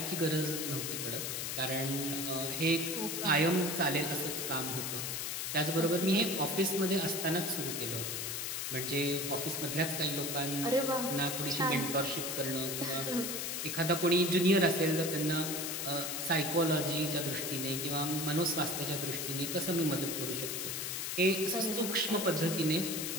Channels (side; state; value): left; noise; hiss, 3 dB below the sound